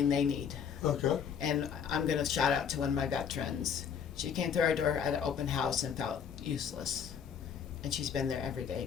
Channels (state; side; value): quieter; right; 7.5 dB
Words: they need. Okay. And I'm going to shout out to one of my veterans. She came through our door at an open house and felt useless. And she's been there every day